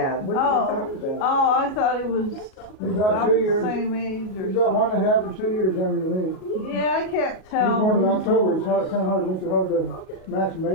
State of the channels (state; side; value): late; right; 37 ms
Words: What are you talking about? Oh, I thought he was He's about about 2 the years. same age or He's about something. 1.5 or 2 years younger than me. Yeah, I can't He was tell. born in October. It's kind of hard. Makes it hard to match May